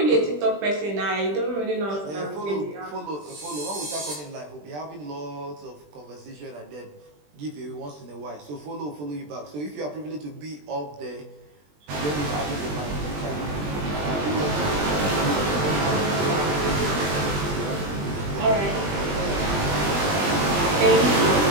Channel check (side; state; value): left; late; 20 ms